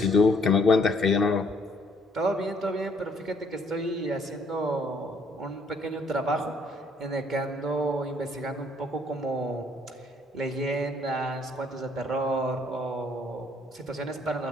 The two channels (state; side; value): normal; both; correlation 0.65